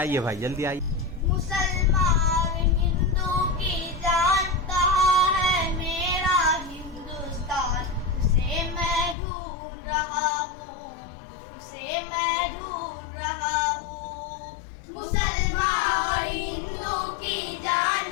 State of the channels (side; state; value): right; drops out; at 9.2 s